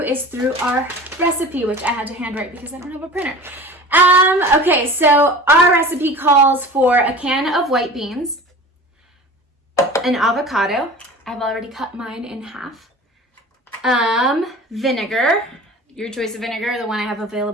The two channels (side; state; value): both; normal; correlation 0.38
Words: is through our recipe, which I had to handwrite because I don't have a printer. Okay, so our recipe calls for a can of white beans, an avocado. I've already cut mine in half. Vinegar. Your choice of vinegar. The one I have